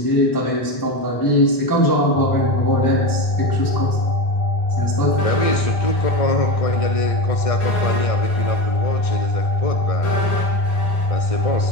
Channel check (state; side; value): late; right; 1.6 ms